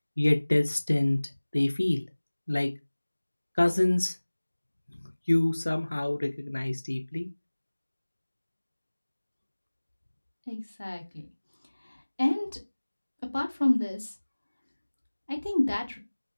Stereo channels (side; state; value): both; inverted; correlation -1.00